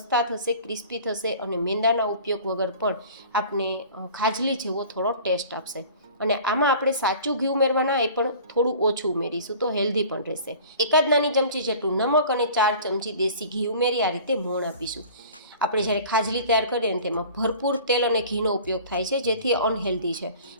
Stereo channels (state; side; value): inverted; both; correlation -0.44